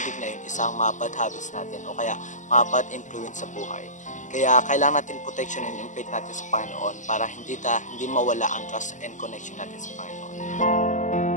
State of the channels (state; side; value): late; right; 0.36 ms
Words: na yun, isang mga bad habits natin o kaya mga bad influence sa buhay. Kaya kailangan natin protectionin yung faith natin sa Panginoon para hindi mawala ang trust and connection natin sa Panginoon.